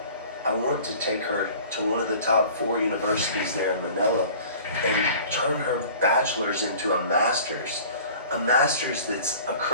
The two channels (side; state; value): both; inverted; correlation -0.45